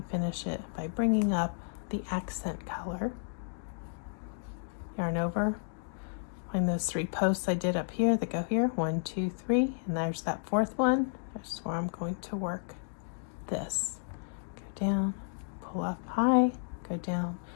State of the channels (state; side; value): silent; right; digital silence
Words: finish it by bringing up the accent color, yarn over, find those 3 posts I did up here that go here, 1, 2, 3, and there's that 4th one. That's where I'm going to work this. Go down, pull up high, go down,